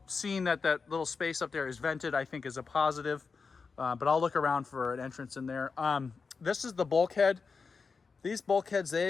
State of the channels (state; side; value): quieter; right; 4.9 dB